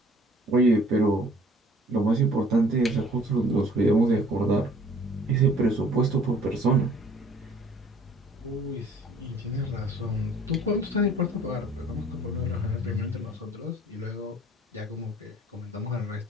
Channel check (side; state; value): both; normal; correlation 0.54